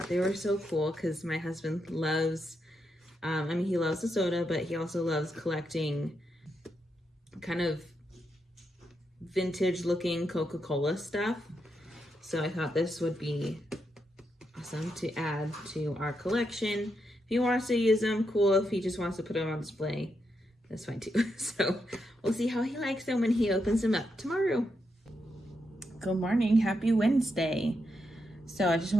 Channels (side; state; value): both; normal; correlation 0.83